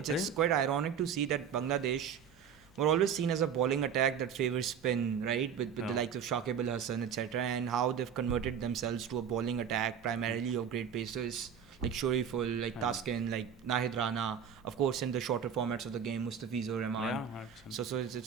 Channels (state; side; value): quieter; left; 7.6 dB